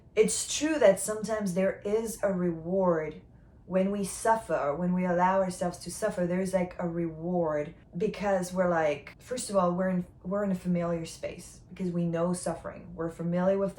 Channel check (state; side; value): identical; both; correlation 1.00